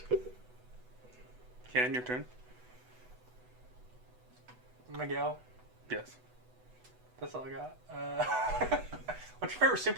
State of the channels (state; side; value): late; left; 8.0 ms